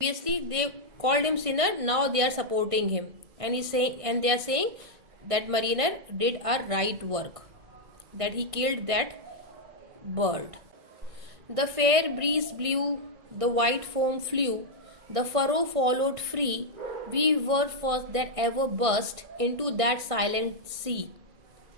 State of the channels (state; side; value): late; left; 1.6 ms